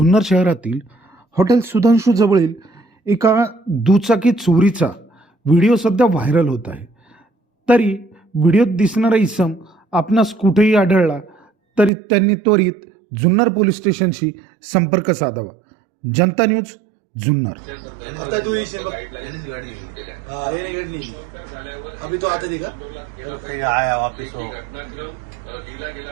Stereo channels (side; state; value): left; drops out; at 11.9 s